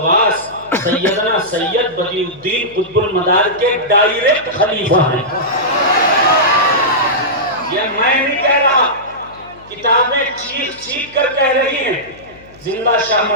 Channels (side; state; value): left; noise; hum, 24 dB below the sound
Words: سیدنا سید بدیع الدین قطب المدار کے ڈائریکٹ خلیفہ ہیں. یہ میں نہیں کہہ رہا، کتابیں چیخ کر کہہ رہی ہیں. زندہ شاہ